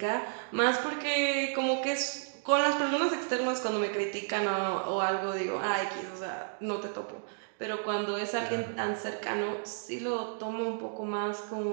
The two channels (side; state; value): left; silent; digital silence